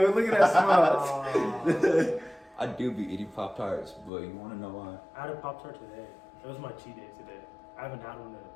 it. Look at that smile. I do be eating Pop-Tarts, but you wanna know why? I had a Pop Tart today. It was my cheat day today. I haven't had one in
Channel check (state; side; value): drops out; right; at 4.1 s